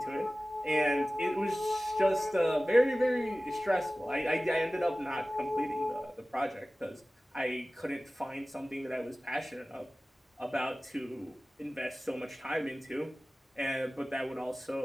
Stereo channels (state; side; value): normal; both; correlation 0.97